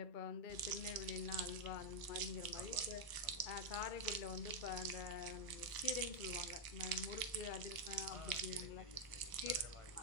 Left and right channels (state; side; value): late; right; 1.0 ms